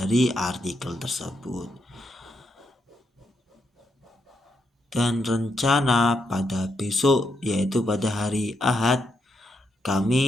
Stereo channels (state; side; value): normal; both; correlation 0.80